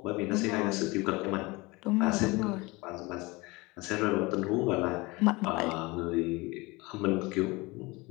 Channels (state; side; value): quieter; right; 23.8 dB